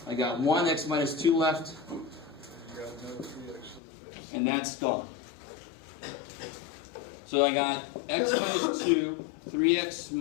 I got 1 x minus 2 left, You got another 3x to the base. and that's gone. So I got x minus 2, 3x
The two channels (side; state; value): right; drops out; at 3.8 s